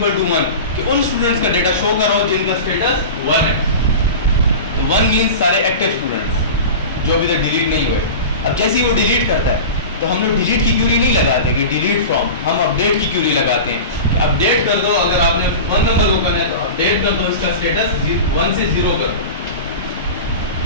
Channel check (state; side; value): inverted; both; correlation -0.31